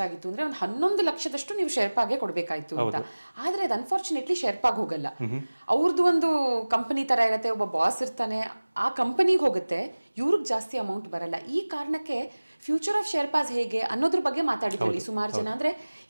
ಅಂದರೆ ಒಂದು 11 ಲಕ್ಷದಷ್ಟು ನೀವು ಶೆರ್ಪಾಗೆ ಕೊಡಬೇಕಾಯ್ತು ಅಂತ. ಆದರೆ ಅದು ಅನ್ಫಾರ್ಚುನೇಟ್ಲಿ ಶೆರ್ಪಾಗೆ ಹೋಗಲ್ಲ. ಅವ್ರದ್ದು ಒಂದು ಕಂಪನಿ ಥರ ಇರುತ್ತೆ, ಒಬ್ಬ ಬಾಸ್ ಇರ್ತಾನೆ, ಆ ಕಂಪನಿಗೆ ಹೋಗುತ್ತೆ, ಇವ್ರಿಗೆ ಜಾಸ್ತಿ ಅಮೌಂಟ್ ಬರಲ್ಲ. ಈ ಕಾರಣಕ್ಕೆ ಫ್ಯೂಚರ್ ಆಫ್ ಶೆರ್ಪಾಸ್ ಹೇಗೆ ಅನ್ನೋದ್ರ ಬಗ್ಗೆ ಮಾತಾಡಿದ್ರಲ್ಲಿ ಸುಮಾರು ಜನ. ಅಂದರೆ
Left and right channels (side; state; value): both; inverted; correlation -1.00